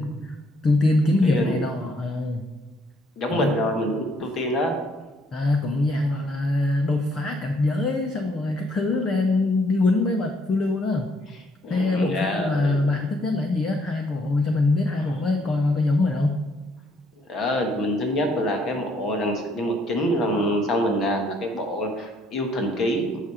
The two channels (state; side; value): normal; both; correlation 0.68